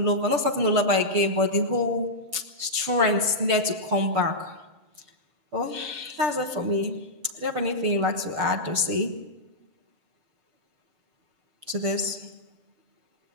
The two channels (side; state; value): left; late; 6.7 ms